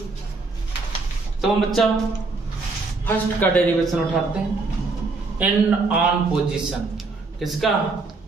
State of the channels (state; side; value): quieter; left; 3.7 dB